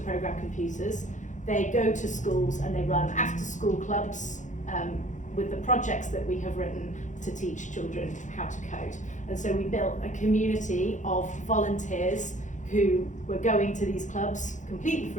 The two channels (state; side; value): late; right; 0.36 ms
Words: program computers, they go to schools and they run after-school clubs with the projects that we have written to teach children how to code. And so we built a community of volunteers who were going to these clubs completely